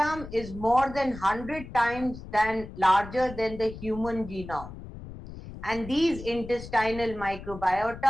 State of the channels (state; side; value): noise; left; rumble, 13 dB below the sound